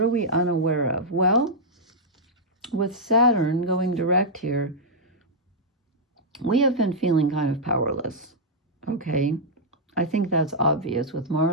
are we unaware of? Well, with Saturn going direct here, we have been feeling kind of powerless, okay? I think that's obvious with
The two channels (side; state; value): both; normal; correlation -0.07